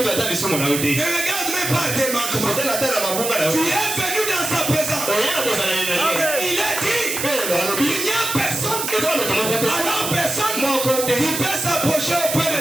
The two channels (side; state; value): right; noise; hiss, 3 dB below the sound